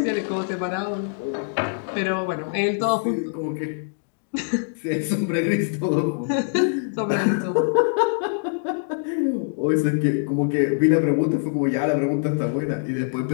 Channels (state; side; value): silent; right; digital silence